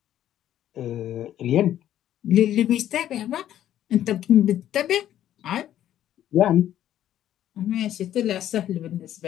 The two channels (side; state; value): right; quieter; 11.7 dB